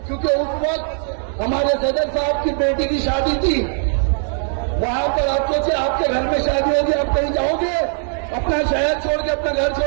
क्योंकि उस वक्त हमारे सदर साहब की बेटी की शादी थी। वहां पर आप सोचिए, आपके घर में शादी होगी, आप कहीं जाओगे? अपना शहर छोड़ के, अपना घर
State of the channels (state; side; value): silent; left; digital silence